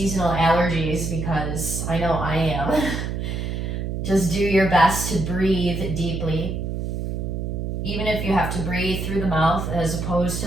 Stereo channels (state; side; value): noise; right; hum, 3 dB below the sound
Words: allergies, because I know I am, just do your best to breathe deeply. Even if you have to breathe through the mouth as opposed